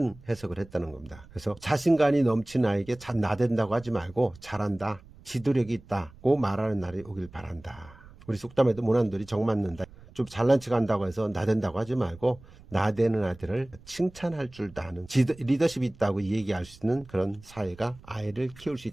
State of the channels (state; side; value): noise; right; rumble, 22 dB below the sound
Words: 해석을 했다는 겁니다. 그래서 자신감이 넘치는 아이에게 나댄다고 하지 말고 잘한다, 지도력이 있다고 말하는 날이 오길 바란다. 우리 속담에도 모난돌이 정 맞는다. 좀 잘난 척 한다고 해서 나댄다고 하지 말고 나대는 아들을 칭찬할 줄도 아는 리더십이 있다고 얘기할 수 있는 그런 사회가 아이를 키울 수